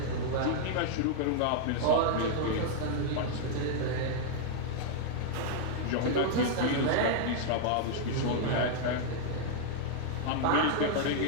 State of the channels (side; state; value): both; different; correlation -0.01